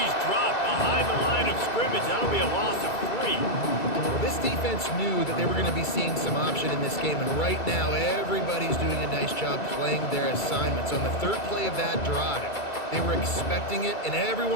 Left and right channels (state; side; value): late; right; 2.3 ms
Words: dropped behind the line of scrimmage. That'll be a loss of 3. Well, this defense knew that they were going to be seeing some option in this game, and right now everybody's doing a nice job playing their assignments. On the third play of that drive, they were expecting it, and